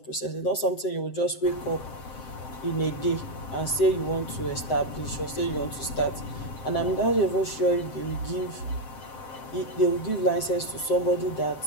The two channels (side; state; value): right; late; 7.7 ms